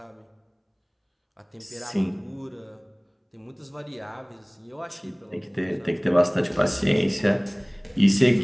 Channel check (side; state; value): both; identical; correlation 1.00